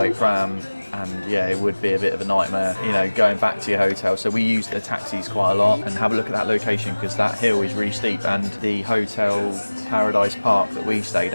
pram. And yeah, it would be a bit of a nightmare, you know, going back to your hotel. So we use the taxis quite a lot, and have a look at that location because that hill is really steep. And the hotel Paradise Park that we stayed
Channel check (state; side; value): inverted; both; correlation -1.00